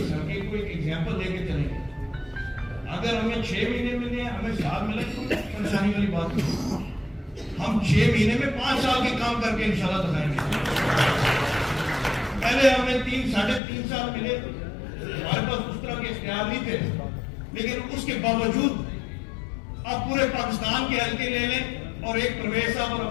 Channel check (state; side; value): drops out; right; at 13.6 s